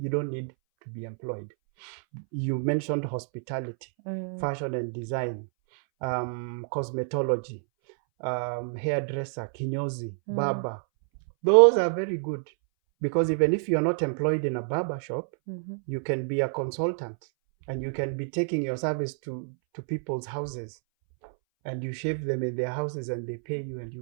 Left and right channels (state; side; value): silent; left; 59 dB below the other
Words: don't need to be employed. You mentioned hospitality, fashion and design, cosmetology, hairdresser, kinyozi, barber. Those are very good, because even if you're not employed in a barber shop, you can be a consultant and you can be taking your service to people's houses. and you shave them in their houses and they pay you and